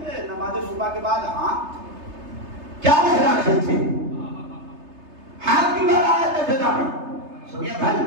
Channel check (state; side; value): late; left; 3.3 ms